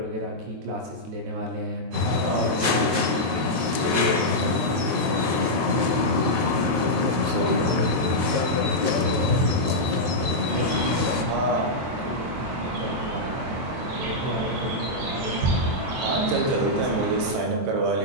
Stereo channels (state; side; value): late; left; 22 ms